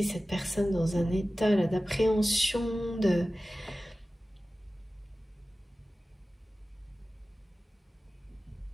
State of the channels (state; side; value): normal; both; correlation 0.96